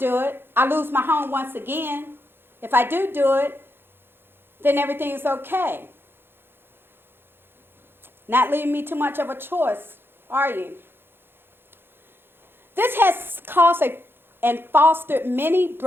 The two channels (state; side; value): late; left; 0.10 ms